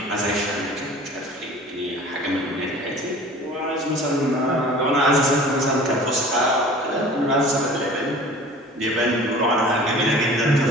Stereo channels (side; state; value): both; normal; correlation 0.44